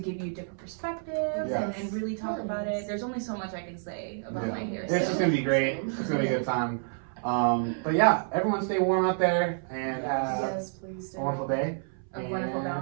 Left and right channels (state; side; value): silent; left; 58 dB below the other